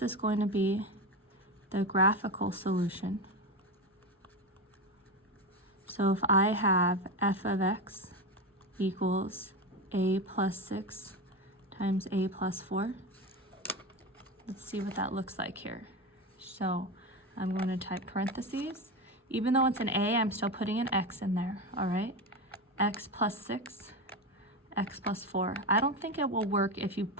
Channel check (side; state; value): both; normal; correlation 0.20